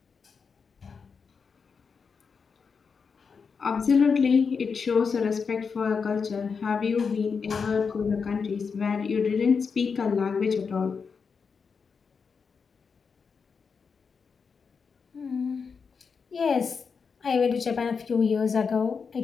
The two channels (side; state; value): right; quieter; 5.6 dB